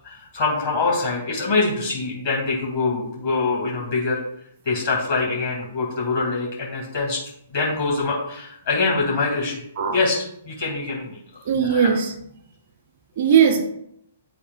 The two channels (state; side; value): inverted; both; correlation -0.47